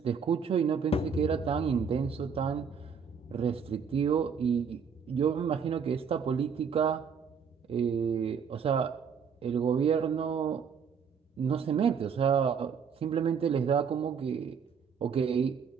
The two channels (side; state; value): left; quieter; 6.5 dB